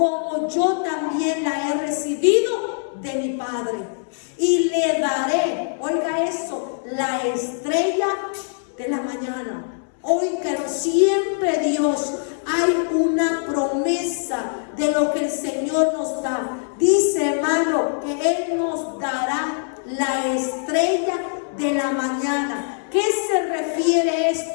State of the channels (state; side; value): silent; right; digital silence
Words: yo también la he recibido de mi Padre. Y le daré, oiga eso, la estrella de la mañana. Oiga, siempre Dios hay una promesa de lo que el Señor nos da. Dice, hermano, que Él nos dará la estrella de la mañana. ¿Qué se refiere